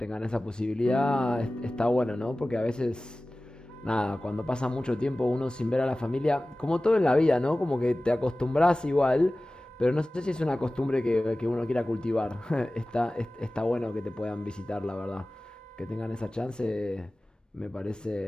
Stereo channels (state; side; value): normal; both; correlation 0.97